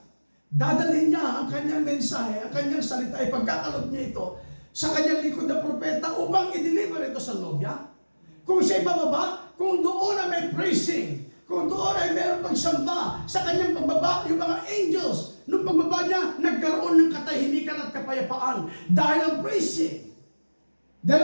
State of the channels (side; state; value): both; inverted; correlation -1.00